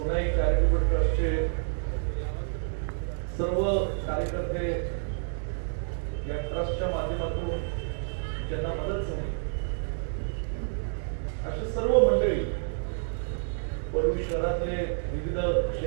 चॅरिटेबल ट्रस्टचे सर्व कार्यकर्ते या ट्रस्टच्या माध्यमातून ज्यांना मदत झाली अशी सर्व मंडळी, परळी शहरातले विविध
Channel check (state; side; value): silent; left; digital silence